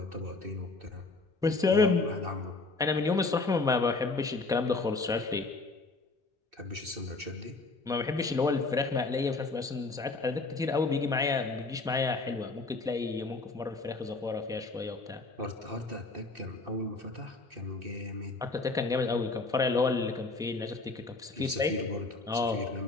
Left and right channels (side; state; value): right; quieter; 3.6 dB